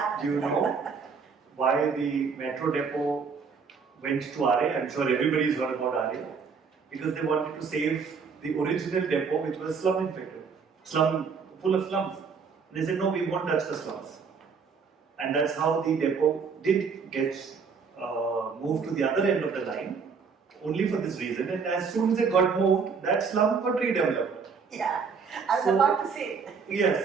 Do you know why the metro depot went to RA? I'm sure everybody's heard about RA. Because they wanted to save the original depot, which was slum infected, full of slums. And they said, no, we won't touch the slums. And that's how the depot did get moved to the other end of the line, only for this reason. And as soon as it got moved, that slum got redeveloped. Yeah, I was about to say.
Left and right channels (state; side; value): quieter; left; 5.6 dB